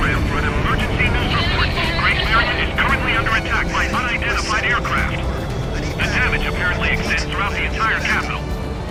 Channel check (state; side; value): identical; both; correlation 1.00